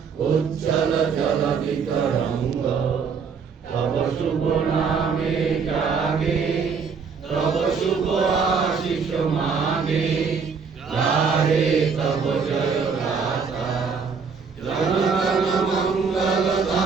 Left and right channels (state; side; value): quieter; left; 5.7 dB